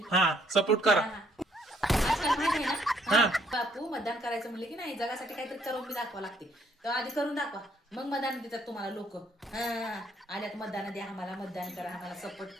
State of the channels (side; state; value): both; normal; correlation 0.67